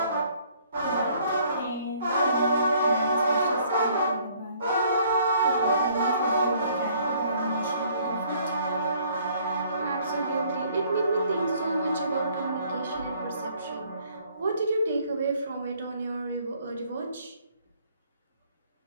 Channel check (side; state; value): both; inverted; correlation -0.61